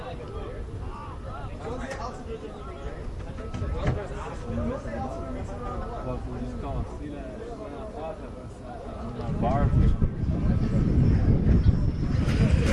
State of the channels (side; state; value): both; identical; correlation 1.00